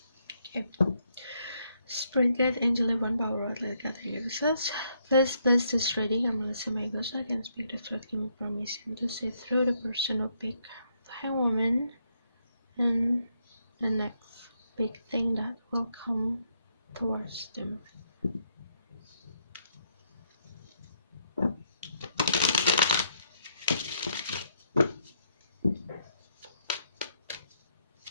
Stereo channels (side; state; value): both; inverted; correlation -0.74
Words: Spirit guide, angel, divine power, let God hear us. Please bless this reading. I'm Melissa My Ghost. I can speak the truth. Give me permission to see through the person who pick the Hanged Woman and the next big thing that will come towards them.